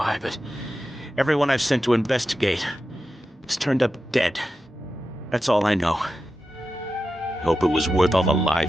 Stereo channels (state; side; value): normal; both; correlation 0.91